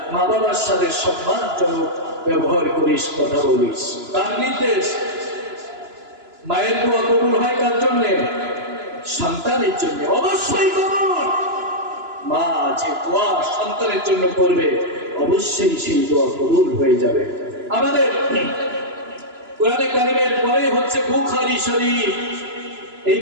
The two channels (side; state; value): left; late; 2.9 ms